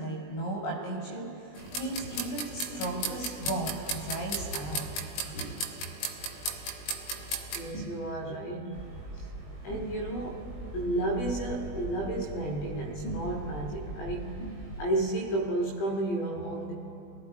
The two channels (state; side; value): late; right; 20 ms